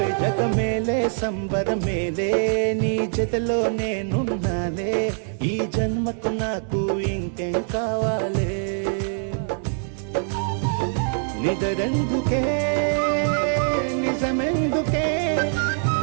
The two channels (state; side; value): silent; left; 59 dB below the other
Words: జగమేలే సంబరమేలే నీ జతలో నేనున్నాలే ఈ జన్మకు నాకు ఇంకేం కావాలే నిదరెందుకే నిజమెందుకే